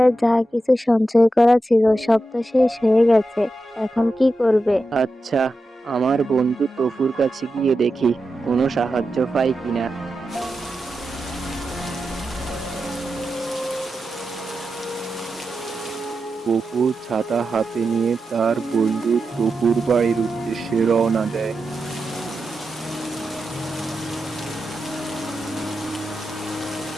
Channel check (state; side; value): normal; both; correlation 0.89